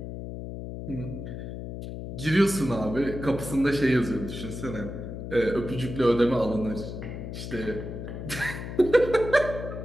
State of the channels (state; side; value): noise; left; hum, 8 dB below the sound